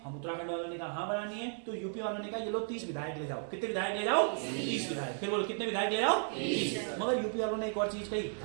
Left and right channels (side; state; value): left; silent; 55 dB below the other